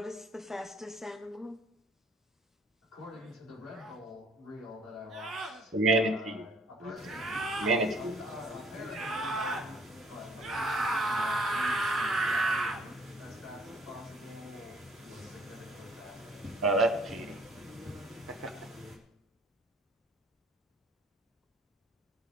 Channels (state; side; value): normal; both; correlation 0.59